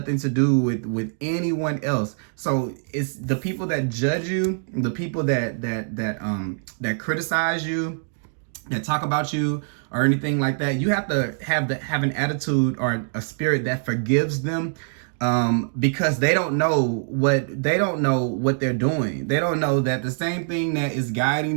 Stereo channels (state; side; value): silent; left; digital silence